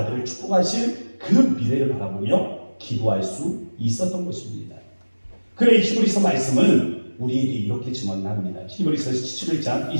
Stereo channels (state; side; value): inverted; both; correlation -1.00